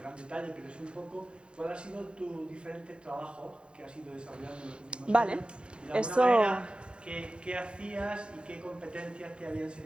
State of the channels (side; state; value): left; late; 0.055 ms